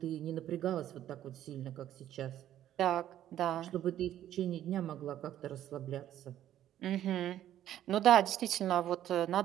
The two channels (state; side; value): quieter; left; 11.9 dB